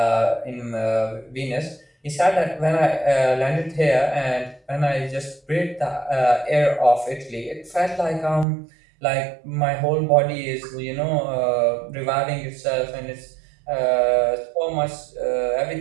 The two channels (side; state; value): left; drops out; at 8.5 s